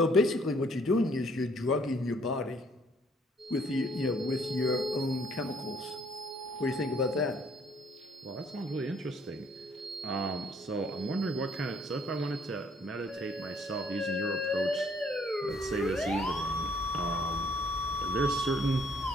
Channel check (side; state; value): both; normal; correlation 0.63